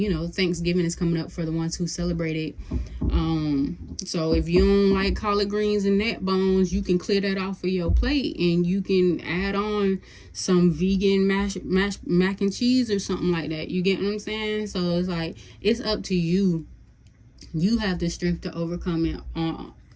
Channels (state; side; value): identical; both; correlation 1.00